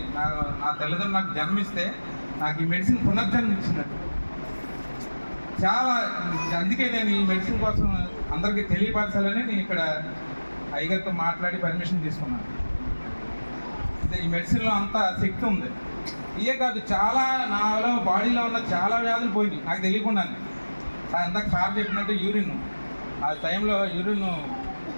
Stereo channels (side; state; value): both; inverted; correlation -1.00